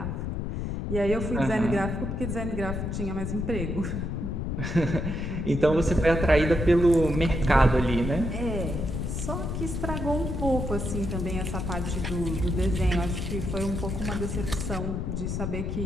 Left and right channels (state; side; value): noise; left; rumble, 3 dB below the sound